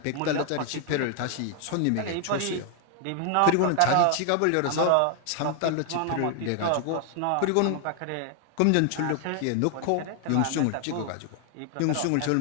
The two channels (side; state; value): both; different; correlation 0.00